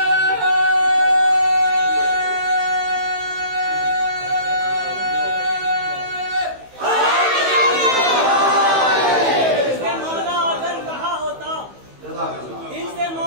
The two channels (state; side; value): late; left; 15 ms